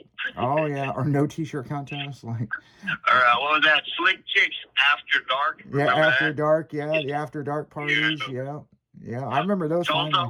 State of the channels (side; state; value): both; identical; correlation 1.00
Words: Oh yeah, or no t-shirt contest, like. Or what was that? Slick Chicks After Dark. Yeah, After Dark. Yeah, the After Dark parties. Yeah. I remember those.